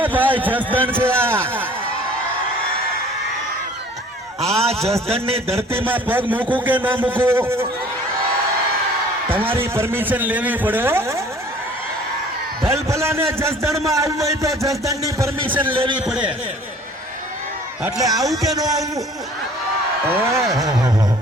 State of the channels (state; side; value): normal; both; correlation 0.52